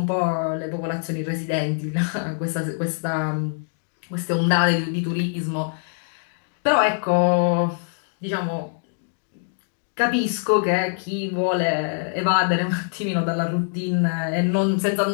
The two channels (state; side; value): silent; right; digital silence